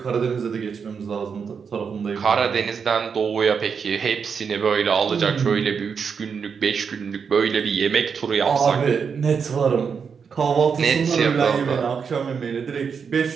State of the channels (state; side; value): quieter; left; 6.2 dB